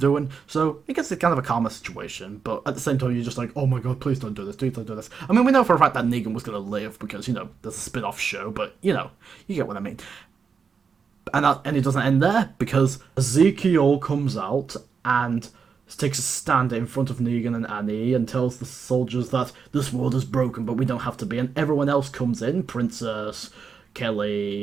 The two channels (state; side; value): quieter; left; 5.8 dB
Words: So I guess it's kind of a calmer situation, but at the same time you're just like, oh my god, please don't do this, please don't do this. I mean, we know for a fact that Negan was going to live because, you know, there's a spin-off show, but, you know, you get what I mean. And it doesn't end there, because Ezekiel comes out and takes a stand in front of Negan and Annie and tells the soldiers that this world is broken, but we don't have to be. And everyone else comes in, Princess,